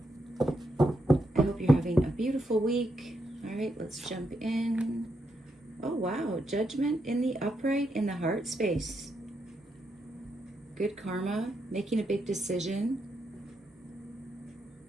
I hope you're having a beautiful week. All right, let's jump in. Oh, wow. Judgment in the upright in the heart space. Good karma, making a big decision.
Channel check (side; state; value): both; normal; correlation 0.81